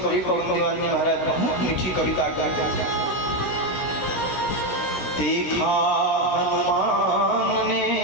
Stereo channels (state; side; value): late; right; 16 ms